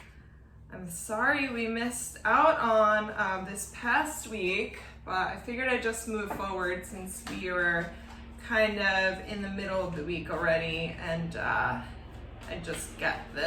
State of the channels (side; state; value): both; identical; correlation 1.00